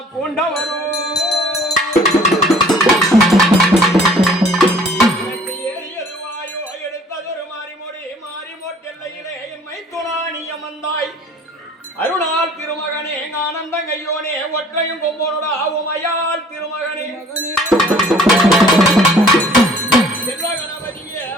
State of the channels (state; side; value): normal; both; correlation 0.54